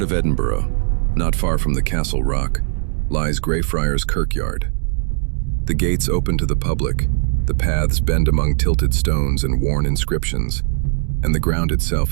of Edinburgh, not far from the Castle Rock, lies Greyfriars Kirkyard. The gates open to the public, the paths bend among tilted stones and worn inscriptions, and the ground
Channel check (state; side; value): silent; left; 66 dB below the other